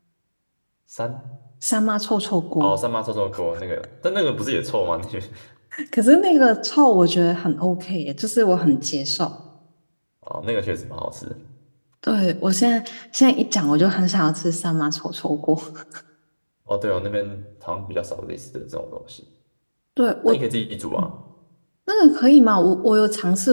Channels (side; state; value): both; inverted; correlation -1.00